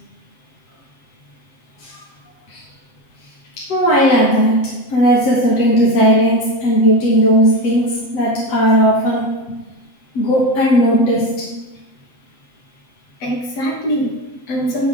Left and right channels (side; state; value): right; late; 7.7 ms